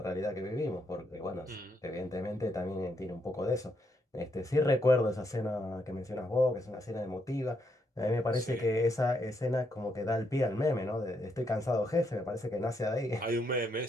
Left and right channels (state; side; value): normal; both; correlation 0.77